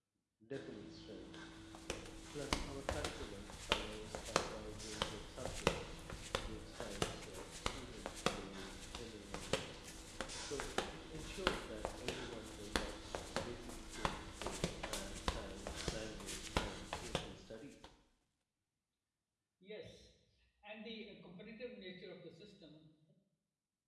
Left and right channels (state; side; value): identical; both; correlation 1.00